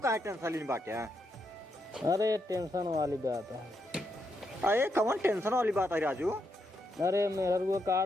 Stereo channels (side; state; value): both; normal; correlation 0.81